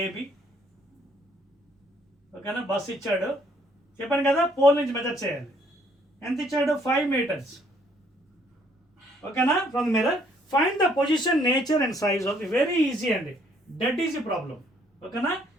ఏబి. ఓకేనా, బస్సు ఇచ్చాడు, చెప్పాను కదా పోల్ నుంచి మెజర్ చేయాలి. ఎంత ఇచ్చాడు, 5 meters. ఓకేనా, from the mirror find the position, nature and size of. Very easy అండి, డెడ్ ఈజీ ప్రాబ్లం. ఓకేనా,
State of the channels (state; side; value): normal; both; correlation 0.65